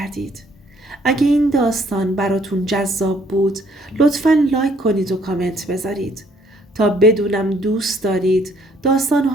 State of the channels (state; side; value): normal; both; correlation 0.64